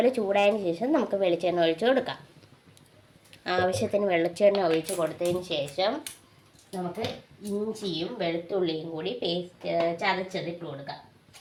ചൂടായതിന് ശേഷം നമുക്ക് വെളിച്ചെണ്ണ ഒഴിച്ച് കൊടുക്കാം. ആവശ്യത്തിന് വെളിച്ചെണ്ണ ഒഴിച്ച് കൊടുത്തതിന് ശേഷം നമുക്ക് ഇഞ്ചിയും വെളുത്തുള്ളിയും കൂടി പേസ്റ്റ് ചതച്ചതിട്ട് കൊടുക്കാം.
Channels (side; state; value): both; identical; correlation 1.00